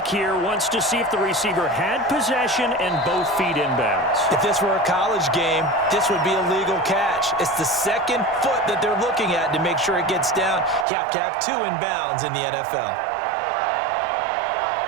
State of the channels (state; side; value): drops out; left; at 10.9 s